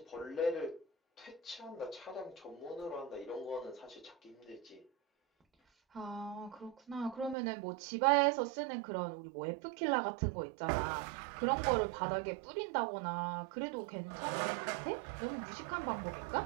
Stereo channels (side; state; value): left; drops out; at 7.4 s